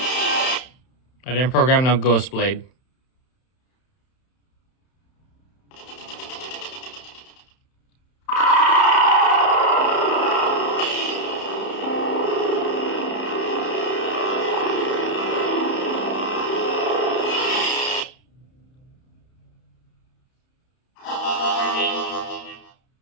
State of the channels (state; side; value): late; right; 31 ms